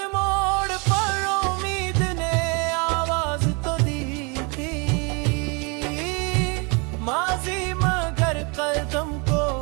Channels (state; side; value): quieter; left; 31.3 dB